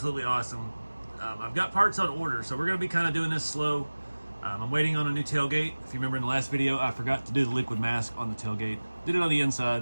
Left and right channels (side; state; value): both; inverted; correlation -1.00